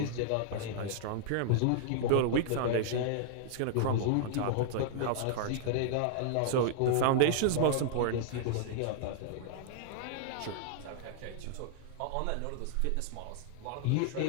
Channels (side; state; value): both; different; correlation -0.01